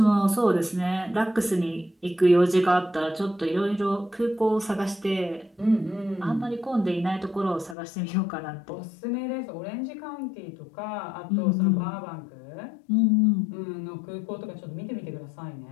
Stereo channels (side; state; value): right; drops out; at 7.8 s